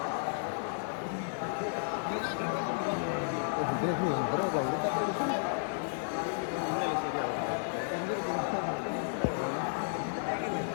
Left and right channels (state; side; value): silent; right; digital silence